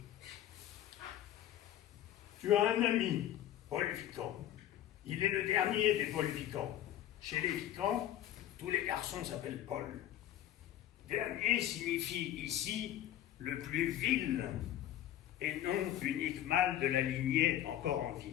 Tu as un ami, Paul Vican. Il est le dernier des Paul Vican. Chez les Vican, tous les garçons s'appellent Paul. Dernier signifie ici le plus vil et non unique mâle de la lignée encore en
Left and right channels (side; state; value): right; quieter; 12.1 dB